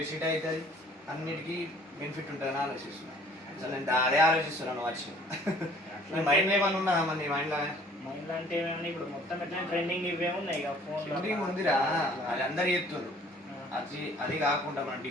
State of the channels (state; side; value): normal; both; correlation 0.54